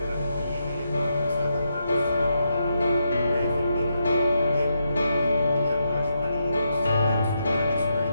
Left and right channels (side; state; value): both; inverted; correlation -0.82